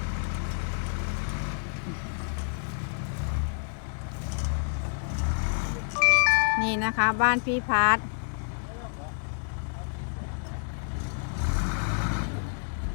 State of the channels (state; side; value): silent; right; 59 dB below the other